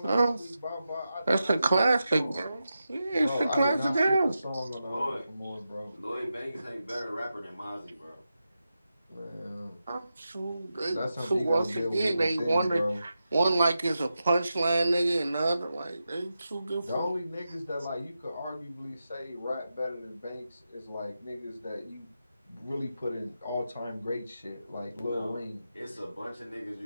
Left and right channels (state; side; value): inverted; both; correlation -0.90